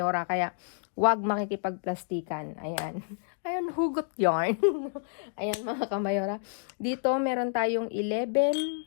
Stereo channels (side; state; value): right; silent; digital silence